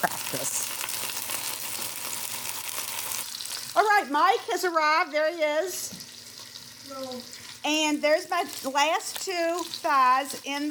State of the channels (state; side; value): identical; both; correlation 1.00